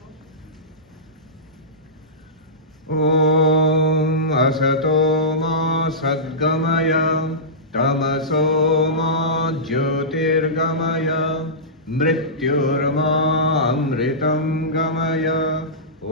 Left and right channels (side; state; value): both; normal; correlation -0.17